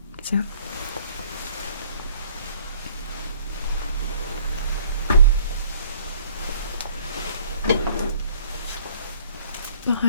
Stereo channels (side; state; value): both; inverted; correlation -0.57